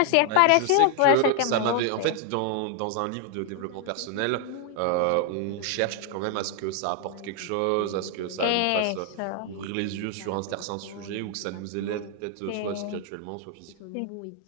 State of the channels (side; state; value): both; different; correlation 0.00